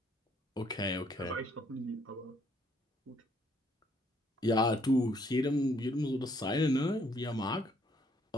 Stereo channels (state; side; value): normal; both; correlation 0.67